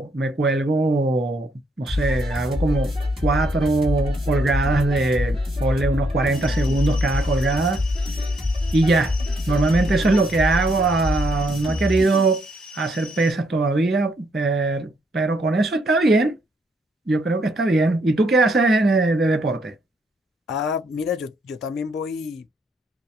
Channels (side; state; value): both; normal; correlation 0.73